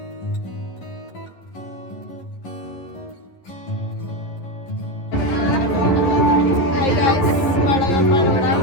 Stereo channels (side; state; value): right; late; 11 ms